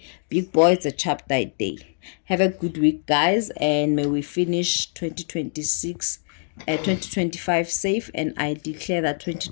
Big boys a chapter a day. Have a good week, guys, and may we finish 2025 safe. And I declare that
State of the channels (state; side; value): silent; right; 63 dB below the other